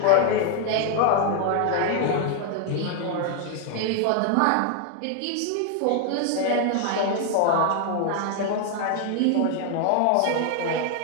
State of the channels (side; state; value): both; different; correlation 0.00